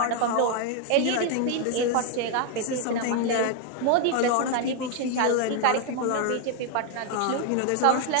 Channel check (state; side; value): different; both; correlation 0.00